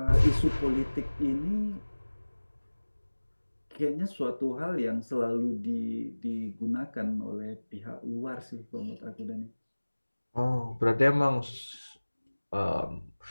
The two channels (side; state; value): both; inverted; correlation -1.00